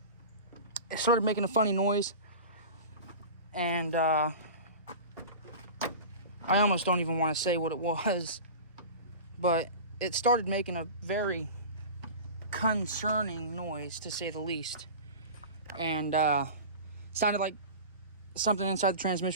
It started making a funny noise, and I almost don't even want to say what it was, but it started making a very concerning noise, to say the least, and sounded like something inside the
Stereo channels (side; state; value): both; inverted; correlation -0.32